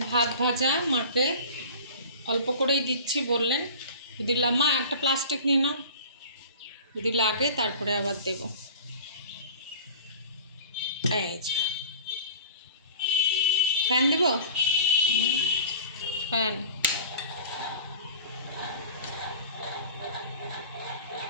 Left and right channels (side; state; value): both; inverted; correlation -0.40